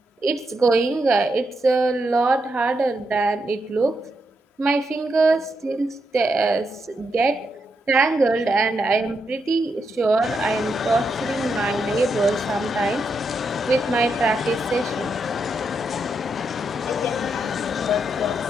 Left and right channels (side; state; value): both; normal; correlation 0.82